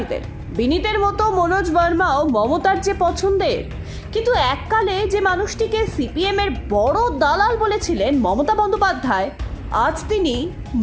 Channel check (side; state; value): both; identical; correlation 1.00